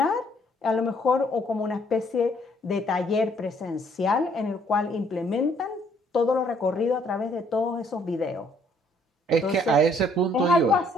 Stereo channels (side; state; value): both; normal; correlation 0.65